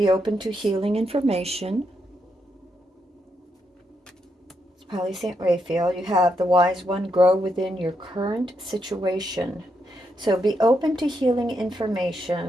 open to healing information. It's probably St. Raphael. You have the Wise One, grow within your current situation. So be open to healing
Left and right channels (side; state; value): both; normal; correlation 0.81